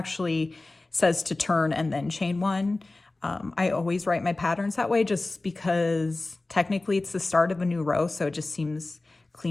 says to turn and then chain 1. I always write my patterns that way just because technically it's the start of a new row, so it just seems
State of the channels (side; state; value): right; quieter; 3.1 dB